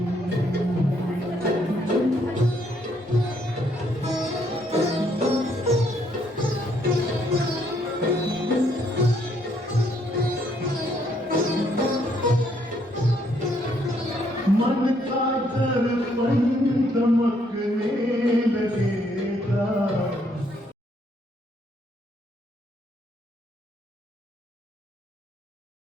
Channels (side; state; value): both; normal; correlation 0.70